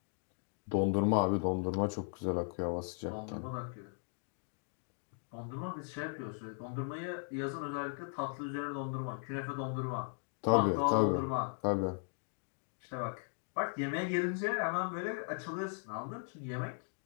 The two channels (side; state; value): right; silent; 53 dB below the other